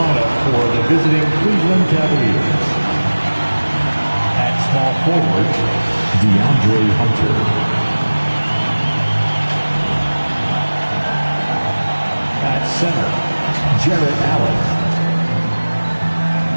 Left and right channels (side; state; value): both; inverted; correlation -1.00